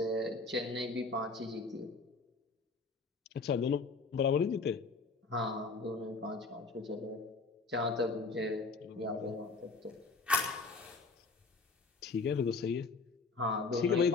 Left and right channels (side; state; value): right; quieter; 4.0 dB